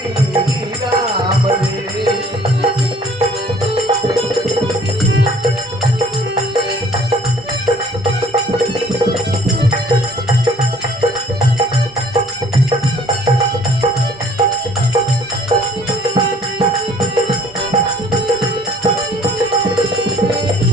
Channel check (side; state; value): both; normal; correlation 0.55